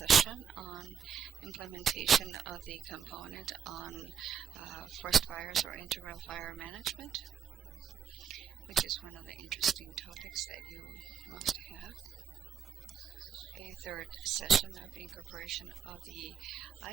on implementation of the component on forest fires or integral fire management, which is one of the interesting topics that you must have. A third session of incorporation of the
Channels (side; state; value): left; quieter; 7.4 dB